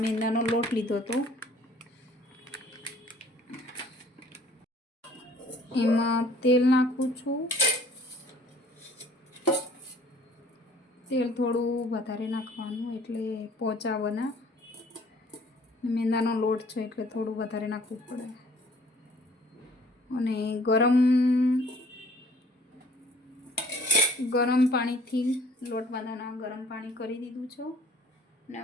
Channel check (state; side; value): normal; both; correlation 0.55